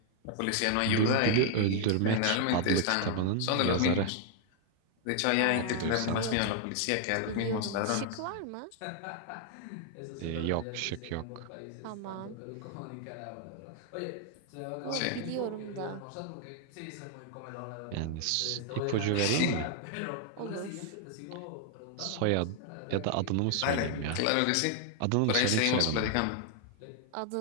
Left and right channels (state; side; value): different; both; correlation 0.00